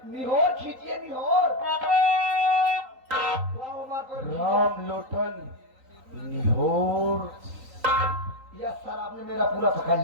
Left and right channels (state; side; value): late; left; 3.9 ms